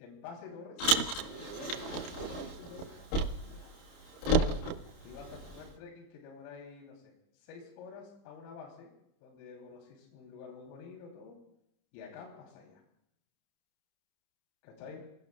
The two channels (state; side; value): late; right; 30 ms